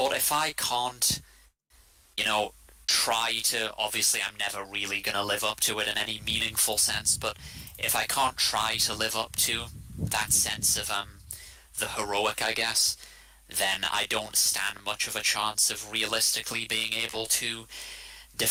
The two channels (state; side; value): identical; both; correlation 1.00